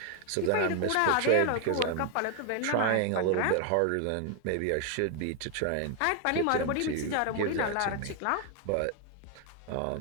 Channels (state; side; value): different; both; correlation 0.00